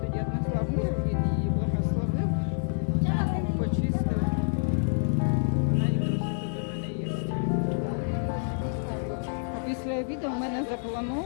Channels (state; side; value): silent; right; digital silence